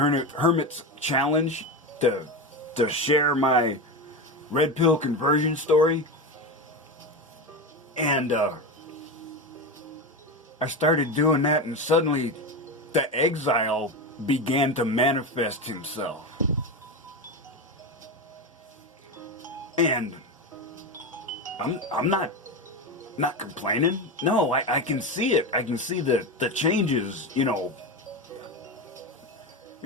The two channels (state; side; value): normal; both; correlation 0.19